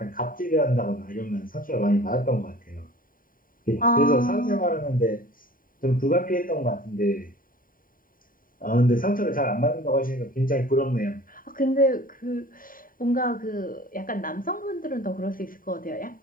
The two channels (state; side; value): late; right; 0.41 ms